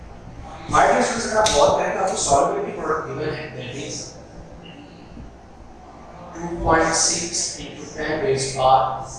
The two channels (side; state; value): both; identical; correlation 1.00